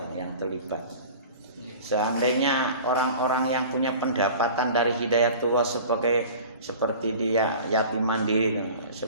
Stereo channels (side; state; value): both; inverted; correlation -0.40